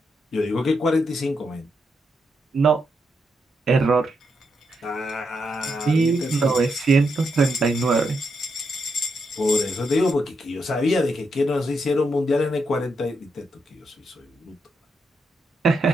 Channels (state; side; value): normal; both; correlation 0.82